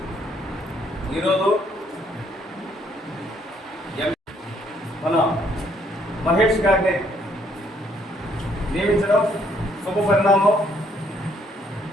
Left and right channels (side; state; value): both; normal; correlation 0.67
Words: ఈరోజు మన మహేష్ గారిని నియమించడం శుభ పరిణామం.